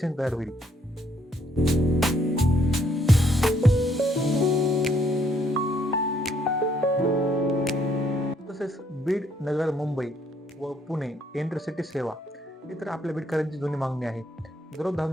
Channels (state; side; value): normal; both; correlation 0.69